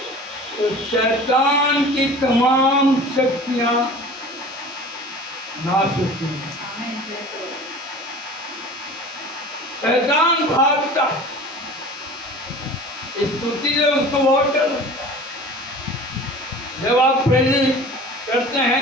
तो शैतान की तमाम शक्तियां नाश होती हैं। शैतान भागता है, स्तुति से उसको बहुत डर लगता है। जब आप प्रेजेंस करते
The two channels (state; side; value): normal; both; correlation 0.41